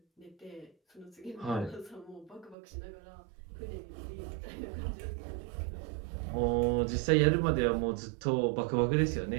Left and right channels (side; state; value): left; drops out; at 2.6 s